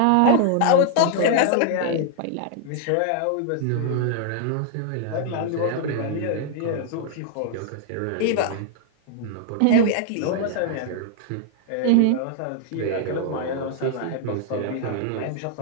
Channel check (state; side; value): different; both; correlation 0.00